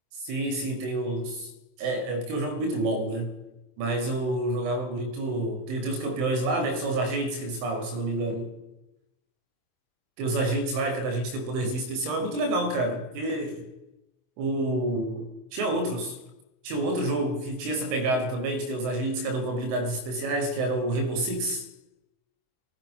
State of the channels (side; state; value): left; late; 23 ms